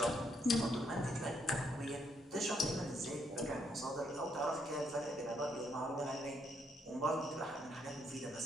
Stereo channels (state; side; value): normal; both; correlation 0.74